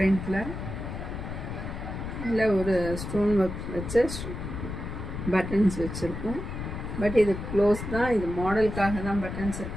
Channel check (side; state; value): left; noise; rumble, 7 dB below the sound